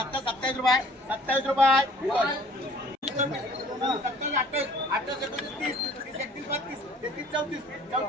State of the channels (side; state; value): both; normal; correlation 0.52